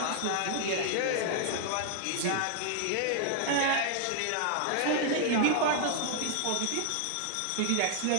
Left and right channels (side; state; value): both; different; correlation 0.00